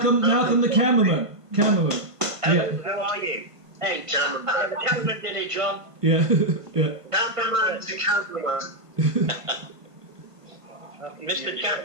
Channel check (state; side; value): late; left; 1.5 ms